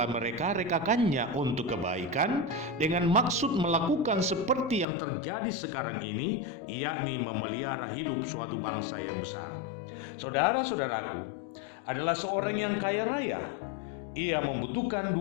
mereka-rekakannya untuk kebaikan dengan maksud melakukan seperti yang terjadi sekarang ini, yakni memelihara hidup suatu bangsa yang besar. Saudara-saudaraku, adalah seorang yang kaya raya. Ia membutuhkan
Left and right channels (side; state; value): right; drops out; at 4.9 s